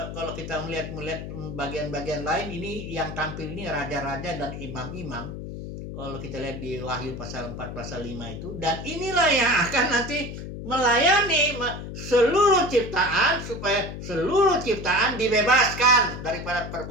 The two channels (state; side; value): noise; left; hum, 9 dB below the sound